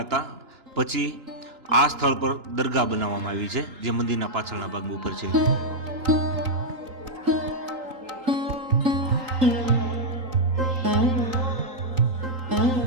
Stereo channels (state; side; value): late; left; 3.8 ms